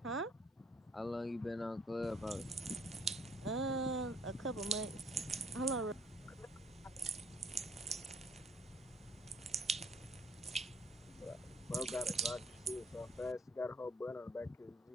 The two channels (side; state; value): both; normal; correlation 0.63